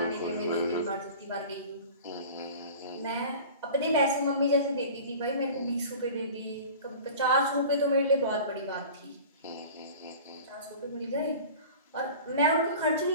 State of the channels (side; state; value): both; inverted; correlation -0.39